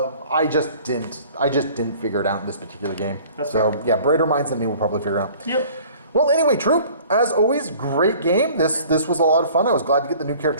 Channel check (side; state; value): both; inverted; correlation -0.49